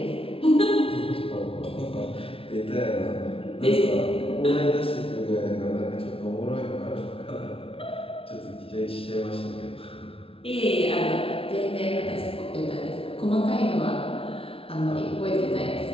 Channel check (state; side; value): late; right; 0.26 ms